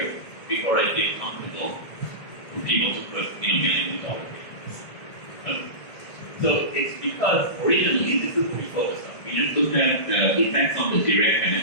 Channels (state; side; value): late; right; 1.8 ms